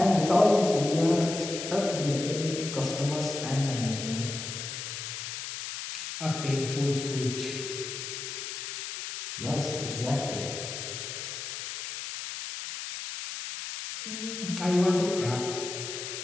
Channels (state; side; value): noise; left; hiss, 6 dB below the sound